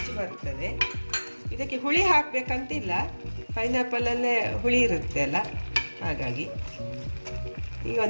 ಬರ್ತದೆ. ಇದಕ್ಕೆ ಹುಳಿ ಹಾಕಬೇಕಂತಿಲ್ಲ, ಪೈನಾಪಲಲ್ಲೇ ಹುಳಿ ಇರುತ್ತೆ ಅಲ್ಲ, ಹಾಗಾಗಿ. ಈಗ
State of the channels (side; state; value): both; inverted; correlation -1.00